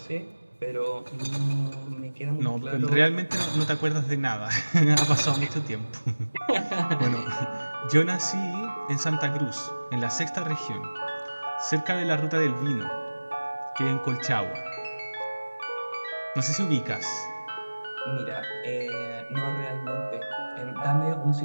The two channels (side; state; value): both; inverted; correlation -1.00